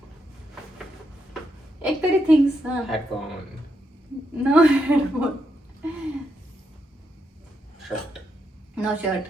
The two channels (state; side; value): normal; both; correlation 0.81